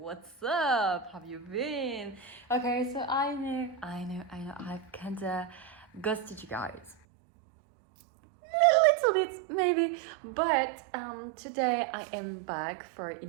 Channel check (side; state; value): left; drops out; at 7.0 s